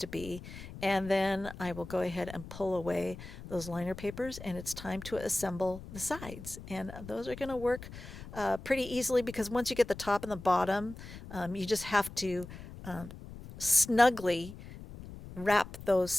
be. And then I will go ahead and pull away those liner papers, and it's time to assemble the sides. And those are going to work pretty easily because once you get the top and the bottom, you just have to snugly wrap those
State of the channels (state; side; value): noise; left; rumble, 13 dB below the sound